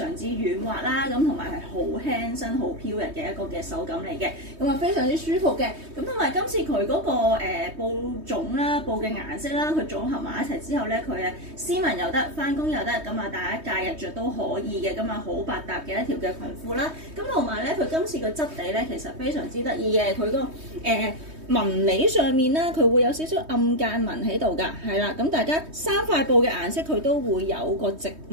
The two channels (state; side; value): late; left; 3.2 ms